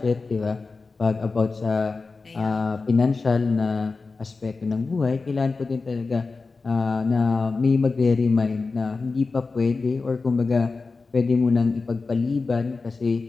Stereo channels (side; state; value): right; quieter; 4.1 dB